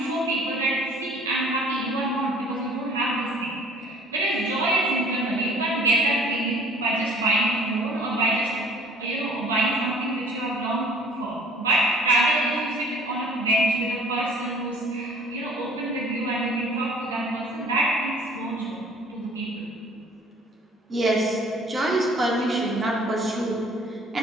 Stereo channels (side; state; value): both; normal; correlation 0.52